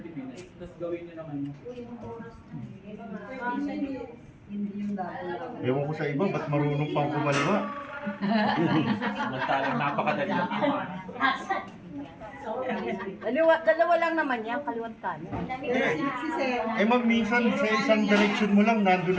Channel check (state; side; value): identical; both; correlation 1.00